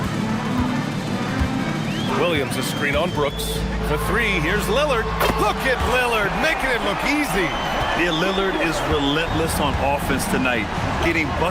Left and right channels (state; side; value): identical; both; correlation 1.00